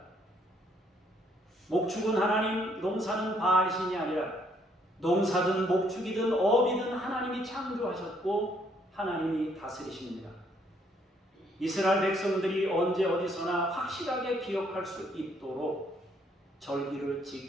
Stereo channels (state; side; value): normal; both; correlation 0.68